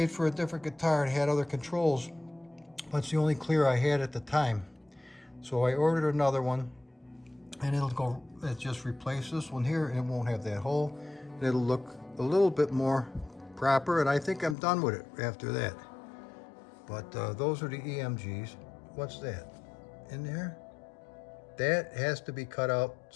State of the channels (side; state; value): right; drops out; at 14.6 s